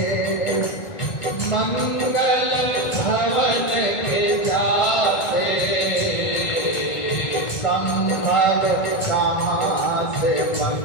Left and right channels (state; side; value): late; right; 1.5 ms